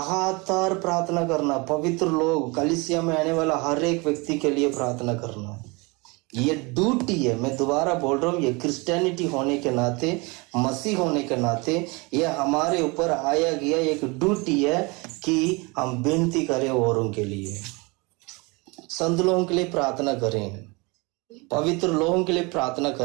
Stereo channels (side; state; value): left; quieter; 27.4 dB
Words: प्रार्थना करना, पवित्र लोग कलीसिया में आने वाला हर एक व्यक्ति के लिए प्रार्थना करना, ये ड्यूटी है। मैं दोबारा बोल रहा हूँ, ये क्रिश्चियनिटी होने के नाते, मसीह होने के नाते, ये हमारे ऊपर आया गया एक ड्यूटी है कि हम विनती करें औरों के लिए, संत लोगों के लिए प्रार्थना करें, पवित्र लोगों के लिए प्रार्थना